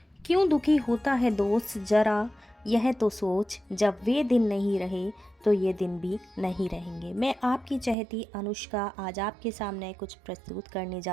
क्यों दुखी होता है दोस्त ज़रा यह तो सोच, जब वे दिन नहीं रहे तो ये दिन भी नहीं रहेंगे। मैं आपकी चहेती अनुष्का आज आपके सामने कुछ प्रस्तुत करने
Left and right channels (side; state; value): left; drops out; at 8.0 s